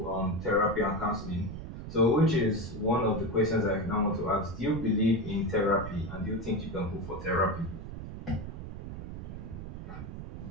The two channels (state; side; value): noise; right; rumble, 9 dB below the sound